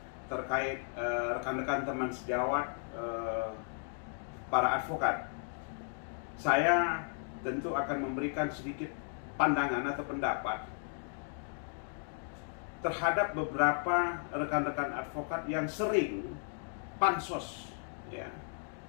terkait rekan-rekan teman sejawat para advokat. Saya tentu akan memberikan sedikit pandangan atau pendapat terhadap beberapa rekan-rekan advokat yang sering pansos, ya,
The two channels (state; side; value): silent; right; 54 dB below the other